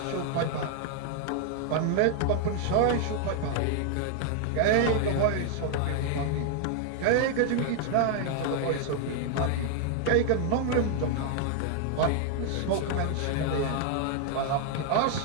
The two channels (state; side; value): different; both; correlation 0.00